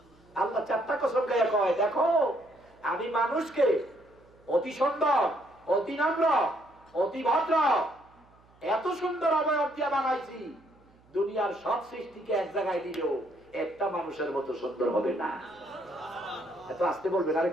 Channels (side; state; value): right; noise; hum, 30 dB below the sound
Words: আল্লাহ 4টা কসম গায়ে কয় দেখো আমি মানুষকে অতি সুন্দর, অতি নম্র, অতি ভদ্র, এত সুন্দর অবয়ব দিয়ে বানাইছি, দুনিয়ার সব সৃষ্টিকে এক জায়গায় দিলেও একটা মানুষের মতো সুন্দর হবে না। এত আসতে বলবেন, আর